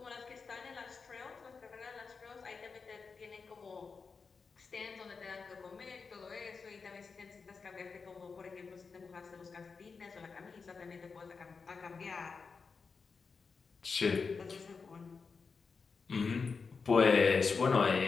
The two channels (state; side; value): quieter; right; 5.0 dB